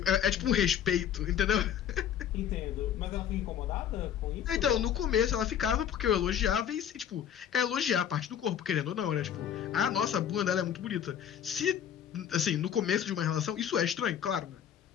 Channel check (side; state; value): right; quieter; 9.3 dB